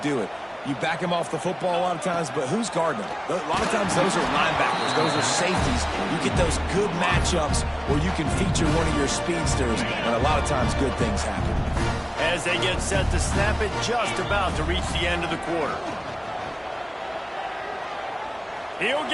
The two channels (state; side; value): identical; both; correlation 1.00